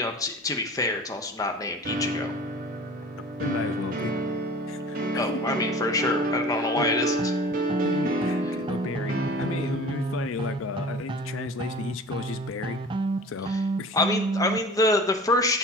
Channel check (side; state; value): both; normal; correlation 0.41